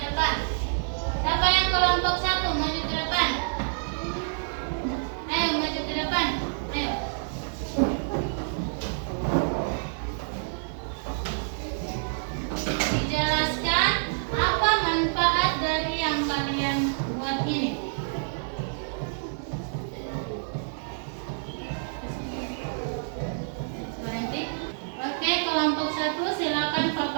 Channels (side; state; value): left; silent; digital silence